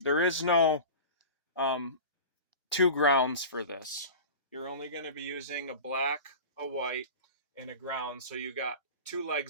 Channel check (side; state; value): both; inverted; correlation -0.33